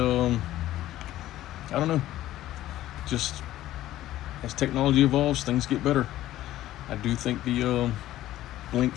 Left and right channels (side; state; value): right; quieter; 14.3 dB